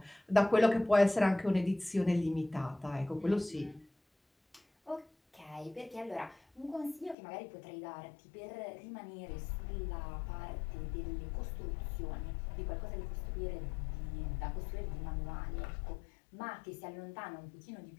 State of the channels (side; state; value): right; drops out; at 7.2 s